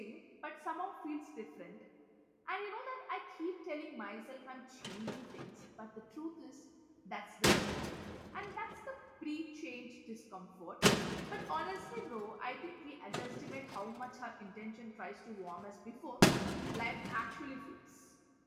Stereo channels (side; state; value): both; identical; correlation 1.00